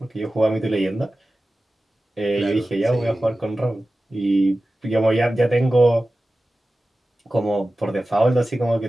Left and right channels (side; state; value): both; normal; correlation 0.95